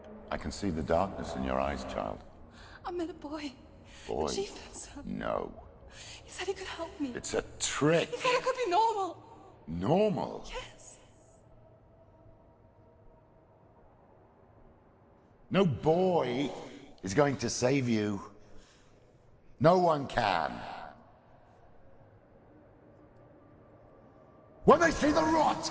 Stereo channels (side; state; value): both; identical; correlation 1.00